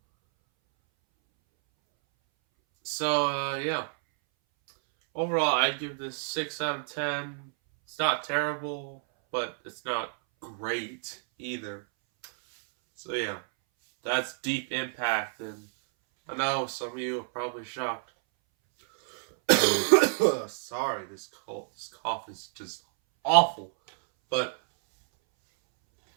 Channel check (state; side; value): silent; left; 59 dB below the other